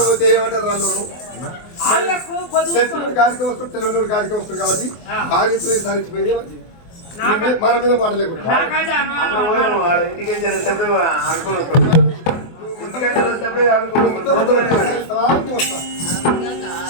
ఏమంటారు వాళ్ళు? గాడికి వస్తుంది, తెలుగునోడు గాడికి వస్తుంది కాబట్టి భార్యతో సారించిపోయింది మంచిది. మన మీద మాటలేకుండా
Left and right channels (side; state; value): right; late; 24 ms